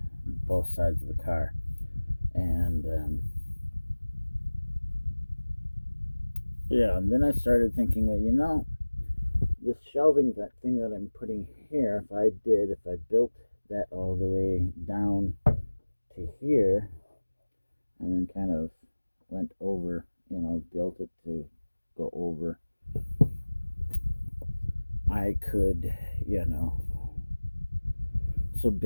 both sides of the car, and yeah, and then I started thinking, well, this shelving that thing that I'm putting here, if I built that all the way down to here, and then kind of went over, built it to go over, I could, so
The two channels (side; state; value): both; inverted; correlation -1.00